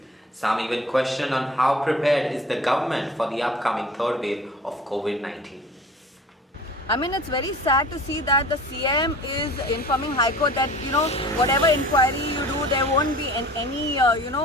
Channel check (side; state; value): both; normal; correlation 0.43